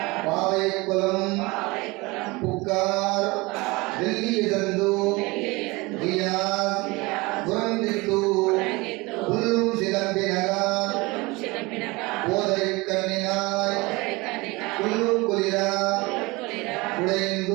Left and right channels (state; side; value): quieter; left; 23.8 dB